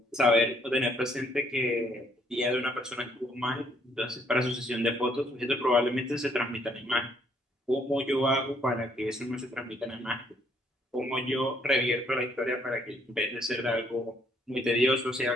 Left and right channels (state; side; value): normal; both; correlation 0.68